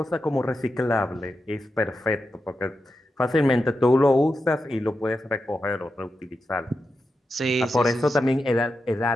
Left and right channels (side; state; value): both; normal; correlation 0.89